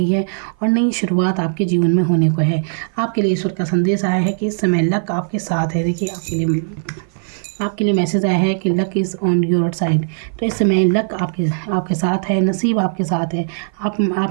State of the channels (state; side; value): silent; left; 55 dB below the other